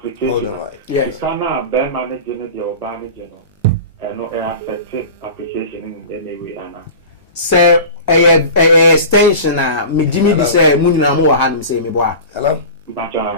Hold on, right. Yes. You cannot bear managing or managing and no affected application in any way. Sir, a extension me Jimmy di say munina mo wa han say me boa. Hello.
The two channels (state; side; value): inverted; both; correlation -0.34